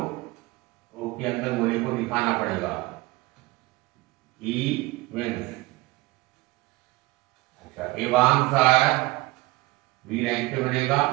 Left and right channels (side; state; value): left; quieter; 21.3 dB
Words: ओ के अंदर गोले को दिखाना पड़ेगा, इवन। अच्छा, एवांस आ रहा है, बी रैंक पे बनेगा,